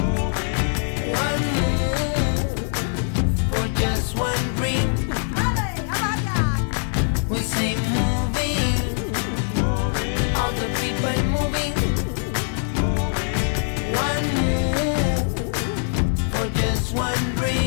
One move for just one dream. We say moving, all the people moving. One move for just one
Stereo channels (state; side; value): silent; right; 62 dB below the other